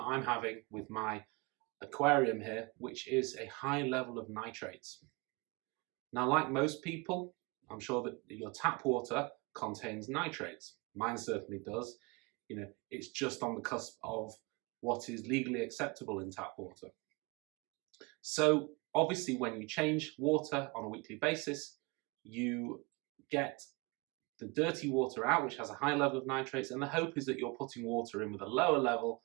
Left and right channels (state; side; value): quieter; left; 27.8 dB